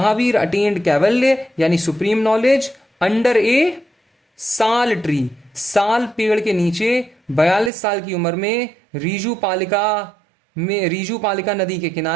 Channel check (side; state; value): left; drops out; at 7.7 s